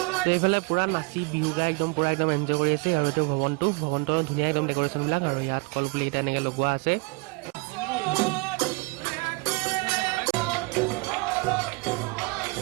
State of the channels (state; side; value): quieter; left; 28.5 dB